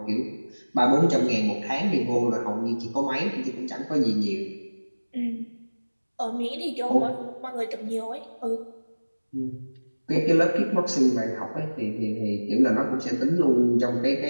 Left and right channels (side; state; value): both; inverted; correlation -1.00